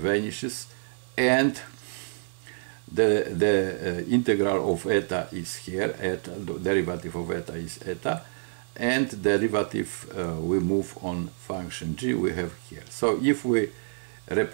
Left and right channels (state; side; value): silent; left; digital silence